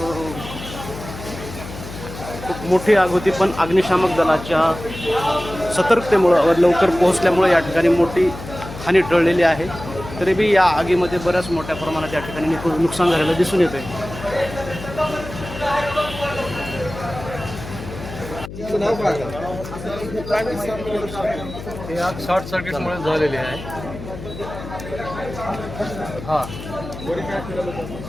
खूप मोठी आग होती, पण अग्निशामक दलाच्या सतर्कतेमुळं लवकर पोहोचल्यामुळे या ठिकाणी मोठी हानी टळलेली आहे. तरी बी या आगीमध्ये बऱ्याच मोठ्या प्रमाणात या ठिकाणी नुकसान झालेलं दिसून येते. हे आग शॉर्ट सर्किटमुळे झालेली आहे. हां, वरी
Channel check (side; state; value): left; noise; hum, 11 dB below the sound